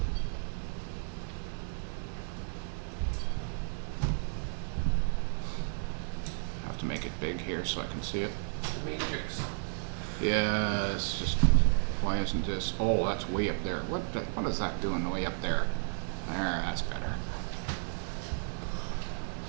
to make it big here so I can see it. Matrix. Yeah, it's just, why isn't this? Oh, that's way up there. What is that doing way up there? There, that's better.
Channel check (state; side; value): silent; left; 56 dB below the other